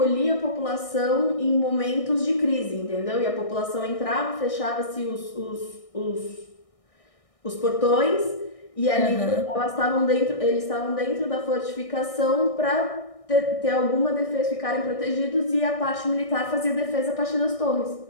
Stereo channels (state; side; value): late; right; 1.6 ms